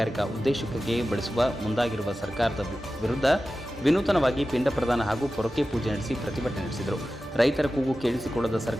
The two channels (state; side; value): normal; both; correlation 0.94